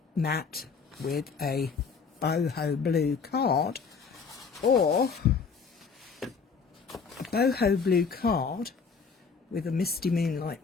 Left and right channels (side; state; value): right; quieter; 5.5 dB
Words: matte with a boho blue card, or a boho blue card with a Misty Moonlight